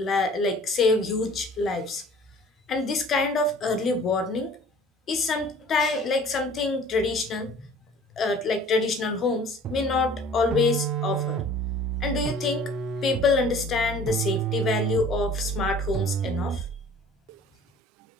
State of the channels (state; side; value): normal; both; correlation 0.49